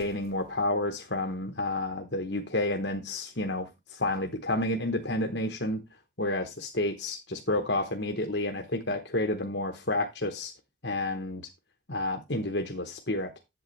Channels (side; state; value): both; normal; correlation -0.11